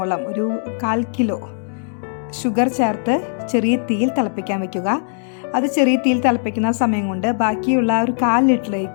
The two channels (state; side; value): silent; right; digital silence